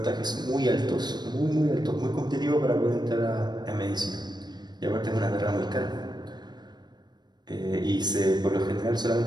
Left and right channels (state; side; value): late; left; 0.21 ms